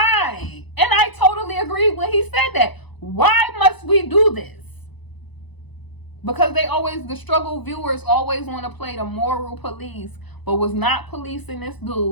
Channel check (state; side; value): late; right; 1.0 ms